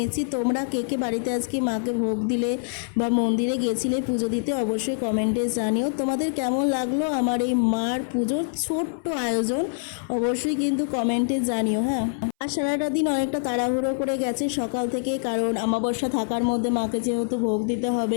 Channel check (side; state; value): right; silent; 60 dB below the other